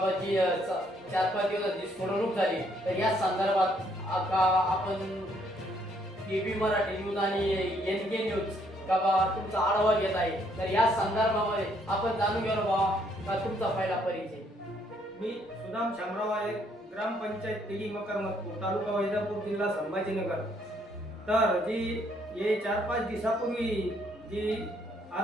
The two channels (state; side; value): normal; both; correlation 0.69